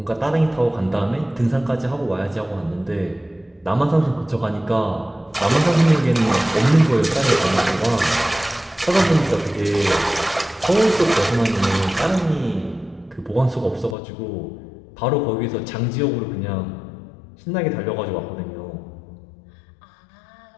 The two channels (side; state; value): right; drops out; at 14.0 s